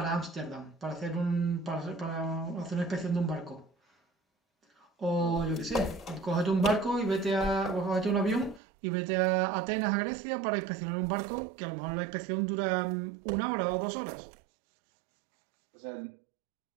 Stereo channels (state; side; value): drops out; left; at 8.6 s